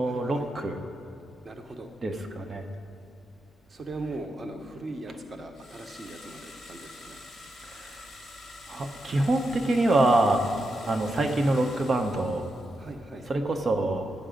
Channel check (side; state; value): both; normal; correlation 0.86